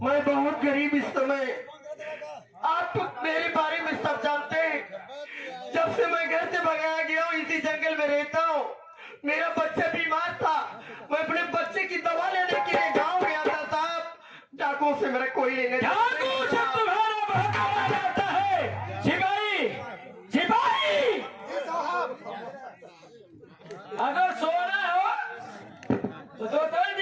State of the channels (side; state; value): both; identical; correlation 1.00